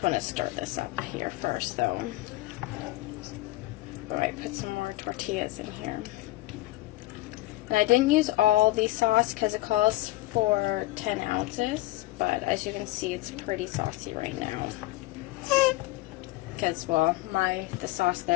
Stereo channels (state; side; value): quieter; right; 18.3 dB